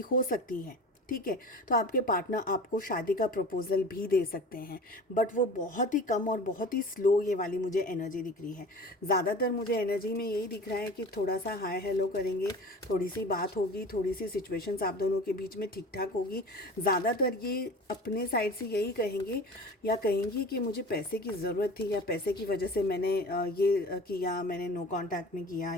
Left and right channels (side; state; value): both; normal; correlation 0.38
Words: हो सकती है, ठीक है, तो आपके पार्टनर आपको शादी का प्रपोजल भी दे सकते हैं, बट वो बहुत ही कम और बहुत ही स्लो ये वाली मुझे एनर्जी दिख रही है। ज़्यादातर मुझे एनर्जी में यही दिख रहा है कि थोड़ा सा हाय हेलो करेंगे, थोड़ी सी बात होगी, थोड़ी सी सिचुएशंस आप दोनों के बीच में ठीक ठाक होगी। ज़्यादातर ये अपने साइड से यही कहेंगे या कहेंगी कि मुझे पैसे की ज़रूरत थी, या पैसे की वजह से मैंने ये किया, मैंने नो कॉन्टैक्ट में किया,